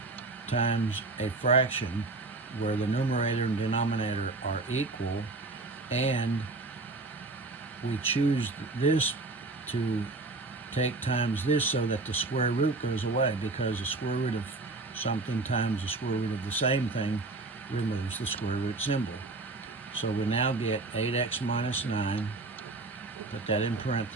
times a fraction where the numerator and denominator are equal, and we choose this to take times this so that the square root goes away, because the square root of something times the square root of the same thing removes the square root symbol. So we now get 8x minus 9, put that in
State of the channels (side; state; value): left; quieter; 3.3 dB